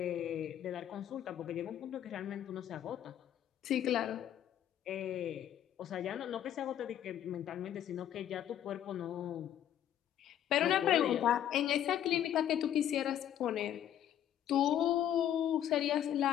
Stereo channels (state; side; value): quieter; right; 10.7 dB